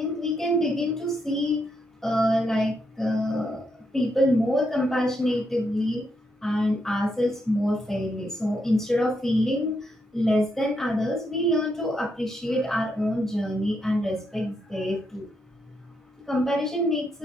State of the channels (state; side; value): normal; both; correlation 0.80